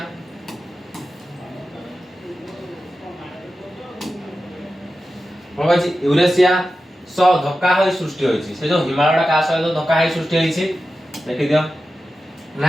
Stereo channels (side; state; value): both; normal; correlation 0.92